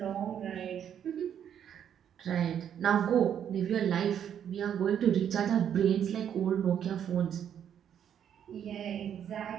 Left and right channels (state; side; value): quieter; left; 9.1 dB